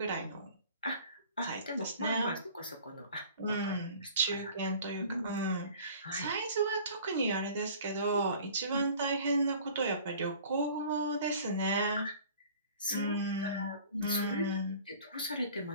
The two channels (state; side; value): inverted; both; correlation -0.47